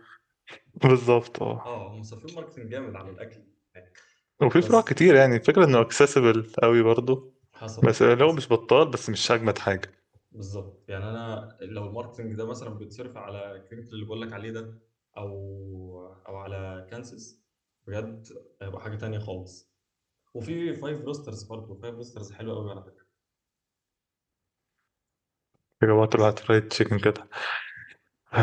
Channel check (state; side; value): identical; both; correlation 1.00